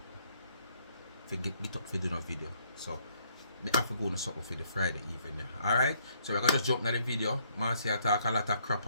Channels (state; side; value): inverted; both; correlation -0.68